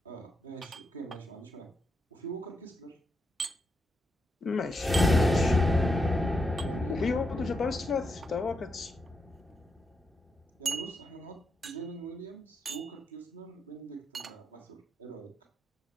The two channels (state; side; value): normal; both; correlation 0.83